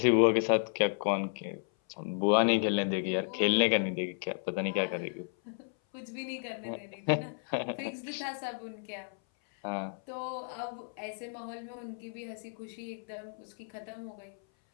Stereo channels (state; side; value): silent; right; 56 dB below the other